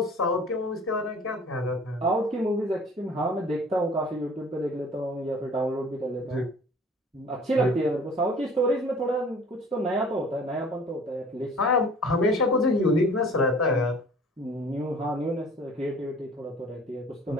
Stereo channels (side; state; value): both; normal; correlation 0.48